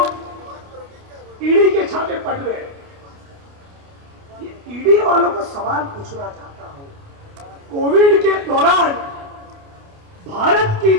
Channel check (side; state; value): left; late; 29 ms